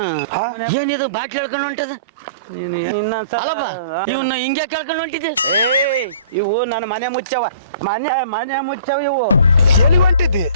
ಏನಿದು ಬಾಟ್ಲಿ ಹೇಳ್ಕೊಂಡು ಹೊಂಟದ ನೀನು ಇನ್ನೊಂದ್ಸಲ ಇವನ್ನ ಹಿಂಗೆ ಕೇಳ್ಕೊಂಡು ಹೊಂಟಿದ್ದೆ ಏಯ್ ಇವು ನನ್ನ ಮನೆ ಮುಚ್ಚವ ಮನೆ ಮುಚ್ಚವ ಇವು ಎಲ್ಲಿ ಹೊಂಟಿದ್ದಿ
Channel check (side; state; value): both; inverted; correlation -0.50